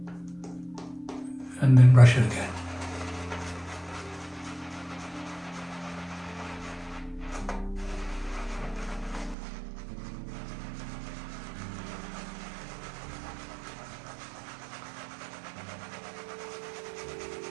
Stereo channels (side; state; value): left; drops out; at 9.3 s